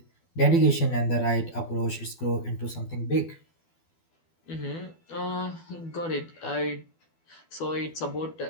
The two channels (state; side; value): late; right; 12 ms